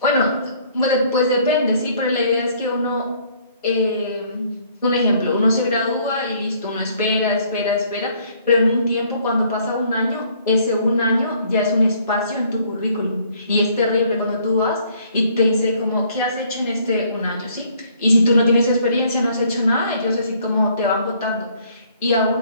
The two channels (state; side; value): inverted; both; correlation -0.62